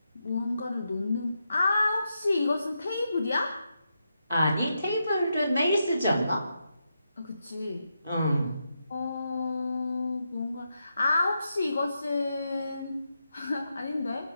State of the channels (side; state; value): both; inverted; correlation -0.85